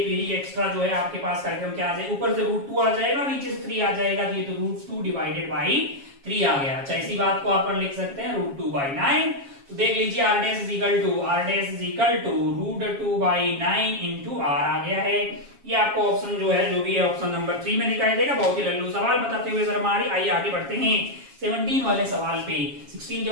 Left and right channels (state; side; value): late; left; 7.3 ms